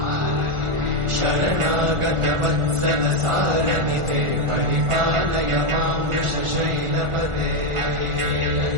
शरणागत वत्सल सारनिते परिपालय मां वृषशैलपते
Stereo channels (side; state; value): left; late; 1.4 ms